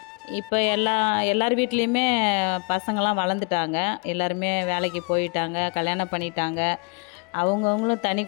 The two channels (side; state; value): right; quieter; 32.7 dB